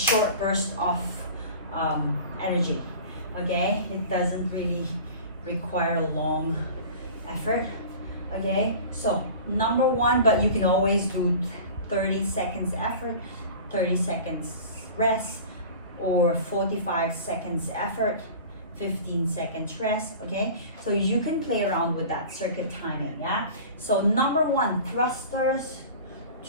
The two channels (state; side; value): inverted; both; correlation -0.39